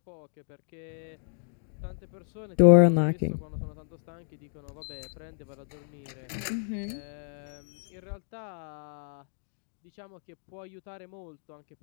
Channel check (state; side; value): silent; right; digital silence